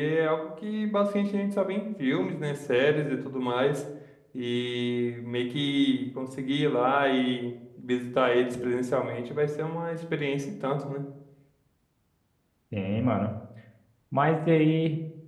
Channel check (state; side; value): identical; both; correlation 1.00